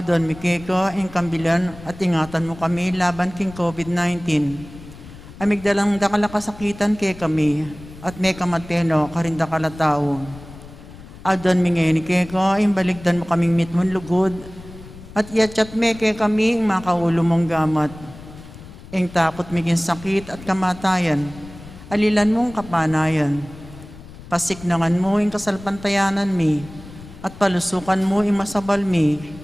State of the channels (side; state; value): left; noise; rumble, 17 dB below the sound